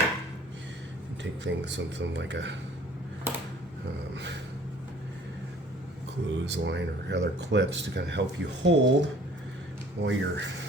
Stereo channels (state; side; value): normal; both; correlation 0.53